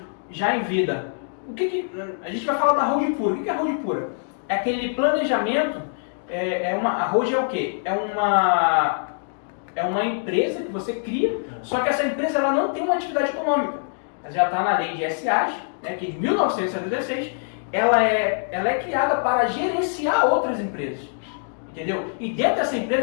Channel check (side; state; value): right; silent; digital silence